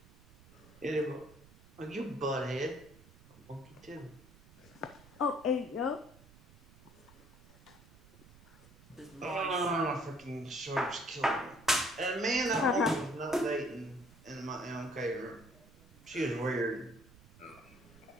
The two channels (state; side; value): noise; right; rumble, 23 dB below the sound